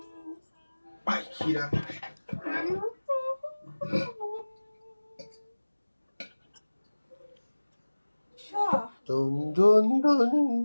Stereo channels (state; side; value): inverted; both; correlation -1.00